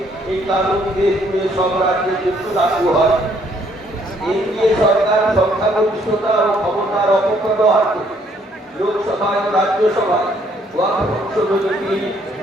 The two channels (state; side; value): normal; both; correlation 0.66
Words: এই কানুন দেশ জুড়ে সব রাজ্যে লাগু হয়। এনডিএ সরকার সংখ্যাগরিষ্ঠতা ও ক্ষমতার অপব্যবহার করে লোকসভায় ও রাজ্যসভায় ওয়াকফ সংশোধনী বিল